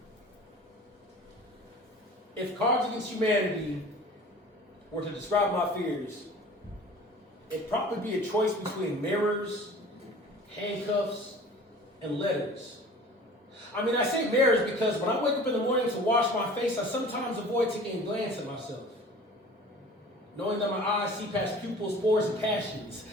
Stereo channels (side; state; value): both; normal; correlation 0.43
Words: If Cards Against Humanity were to describe my fears, it'd probably be a choice between mirrors, handcuffs, and letters. I mean, I say mirrors because when I wake up in the morning to wash my face, I sometimes avoid taking a glance at myself. Knowing that my eyes see past pupils, pores, and passions.